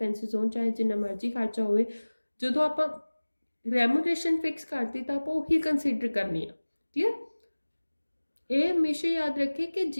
ਹੋਣ ਚਾਹੇ ਜਿੰਨਾ ਮਰਜ਼ੀ ਖਰਚਾ ਹੋਵੇ ਜਦੋਂ ਆਪਾਂ remuneration fix ਕਰਤੀ ਤਾਂ ਆਪਾਂ ਉਹੀ consider ਕਰਨੀ ਆ. Clear? ਇਹ ਹਮੇਸ਼ਾ ਯਾਦ ਰੱਖੇ ਕਿ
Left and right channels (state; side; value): inverted; both; correlation -1.00